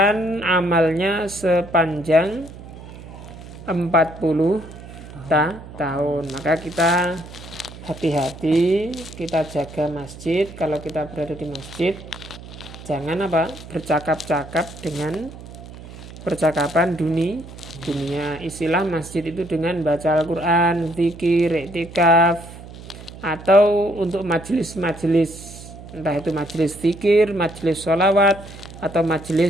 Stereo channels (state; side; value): noise; right; hum, 15 dB below the sound